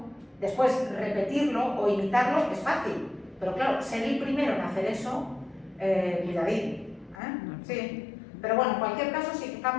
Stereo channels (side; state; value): right; drops out; at 7.2 s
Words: después repetirlo o imitarlo es fácil. Pero claro, ser el primero en hacer eso, cuidadín. Sí. Pero bueno, en cualquier caso sí que